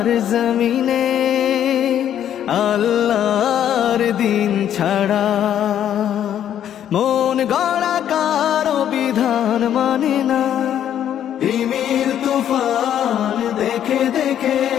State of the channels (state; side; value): quieter; right; 10.2 dB